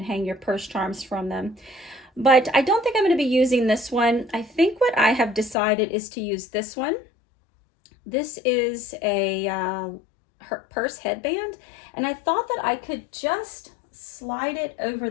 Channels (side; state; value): right; drops out; at 5.6 s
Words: hang your purse charms from them. But I don't think I'm going to be using this one. I think what I have decided is to use this one. This is a purse headband, and I thought that I could just slide it over